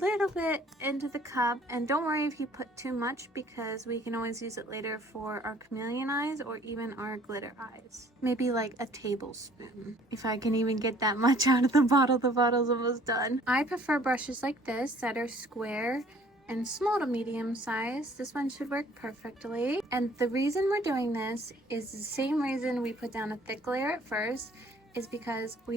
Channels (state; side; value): normal; both; correlation 0.56